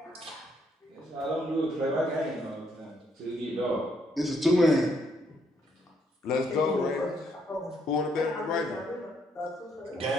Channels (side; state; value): both; normal; correlation 0.72